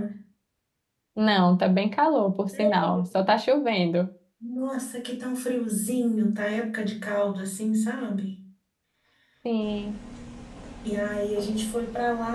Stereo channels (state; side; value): identical; both; correlation 1.00